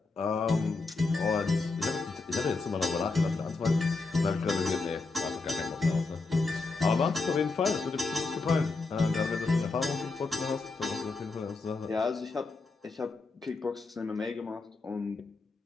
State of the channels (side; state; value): right; quieter; 3.8 dB